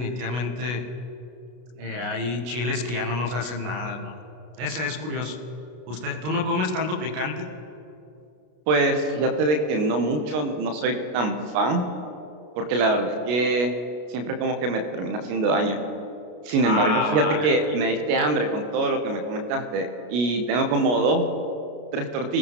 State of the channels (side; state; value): left; late; 33 ms